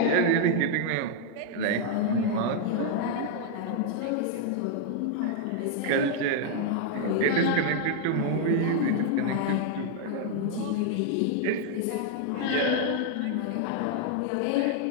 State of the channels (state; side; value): different; both; correlation 0.00